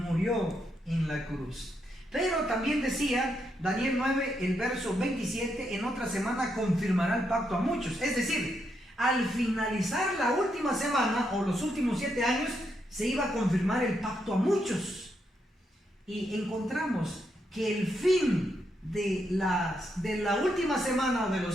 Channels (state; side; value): normal; both; correlation 0.80